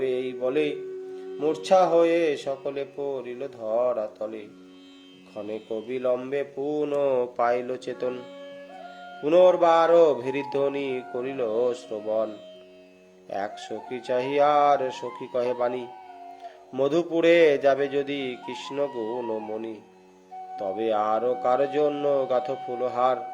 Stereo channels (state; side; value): identical; both; correlation 1.00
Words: এই বলে, মূর্ছা হয়ে সকলে পড়িল ধরা তলে। ক্ষণেক বিলম্বে পুনঃ পাইল চেতন, পুনর্বার ভেরিধ্বনি করিল শ্রবণ। এক সখী চাহিয়ার সখী কহে বাণী, মধুপুরে যাবে যদি কৃষ্ণ গুণমণি। তবে আরো কার জন্য গাথ ফুলহার,